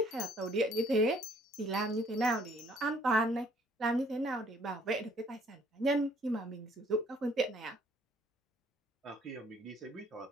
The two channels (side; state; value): both; normal; correlation 0.61